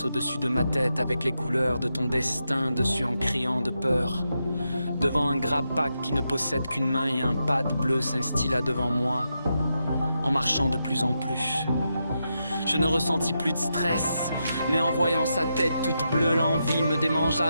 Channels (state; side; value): inverted; both; correlation -0.85